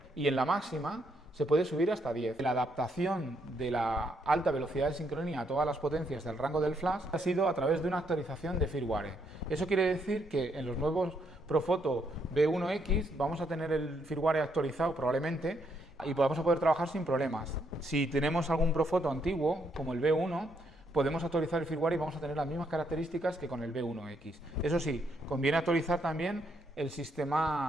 y en la máxima se puede subir hasta 10. La adaptación de la alta velocidad de sincronía a todas las potencias del rango del flash ha sido a través de una actualización de firmware. Eso quiere decir que en los nuevos Profoto B1X vamos a tener el firmware actualizado probablemente y vamos a poder trabajar sin problemas. Si tenemos algún Profoto antiguo, como el B1, podemos actualizar el firmware y vamos a tener las mismas características que con el B1X. Eso sí, conviene actualizar también el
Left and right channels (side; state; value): both; normal; correlation 0.74